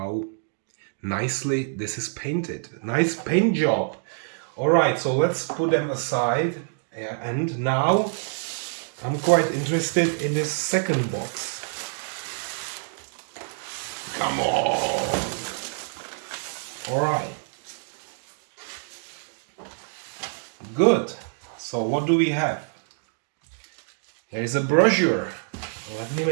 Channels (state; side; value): silent; left; digital silence